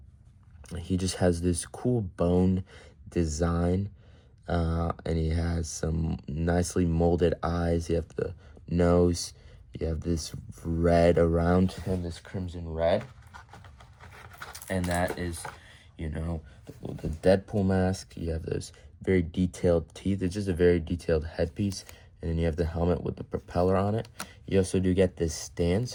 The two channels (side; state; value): both; identical; correlation 1.00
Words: He just has this cool bone design. And he has some nicely molded eyes. You have the nose. You have this red around him, this crimson red. And that is, you know, the Deadpool mask. You have those very detailed teeth. It's just a very detailed headpiece. And then you have the helmet with the propeller on it. You also do get this stand.